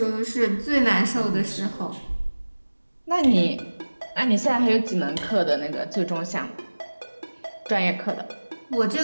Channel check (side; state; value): both; inverted; correlation -1.00